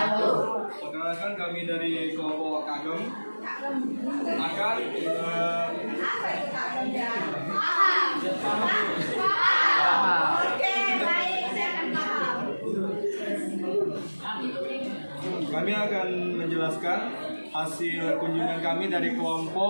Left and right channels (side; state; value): both; inverted; correlation -1.00